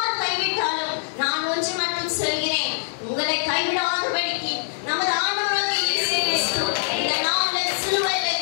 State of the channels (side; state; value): right; silent; digital silence